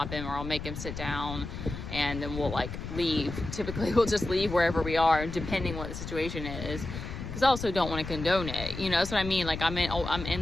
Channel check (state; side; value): noise; left; rumble, 8 dB below the sound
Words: him, or I'll make him sit down, and then we'll like leave. Typically we'll just leave wherever we are, depending what the situation is, because I also don't want to condone it. That's what I mean. Like, I'm